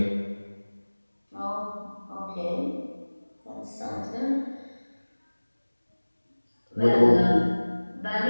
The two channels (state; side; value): inverted; both; correlation -1.00